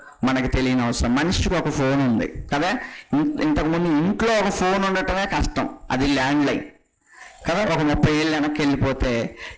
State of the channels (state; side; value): identical; both; correlation 1.00